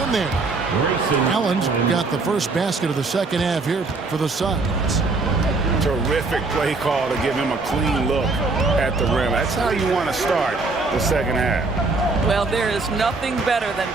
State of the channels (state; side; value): quieter; left; 3.7 dB